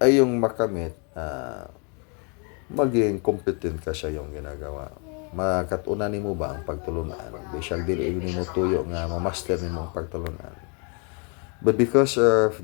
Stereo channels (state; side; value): quieter; right; 36.1 dB